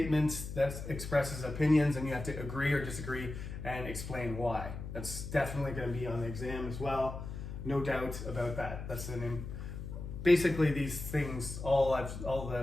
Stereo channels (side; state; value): left; noise; hum, 8 dB below the sound